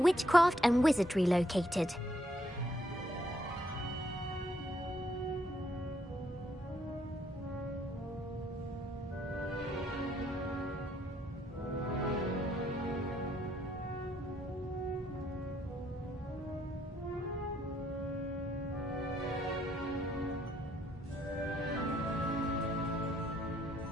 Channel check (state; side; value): normal; both; correlation 0.71